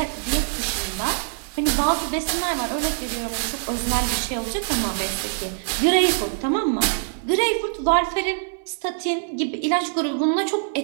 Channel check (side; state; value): left; silent; digital silence